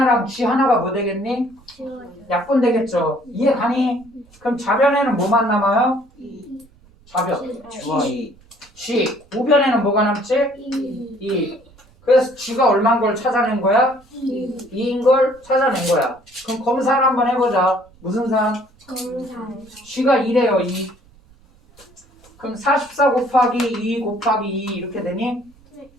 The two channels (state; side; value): noise; right; rumble, 29 dB below the sound